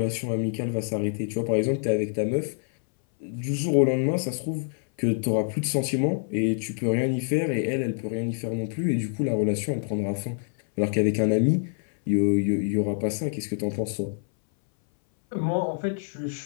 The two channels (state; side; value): silent; right; 59 dB below the other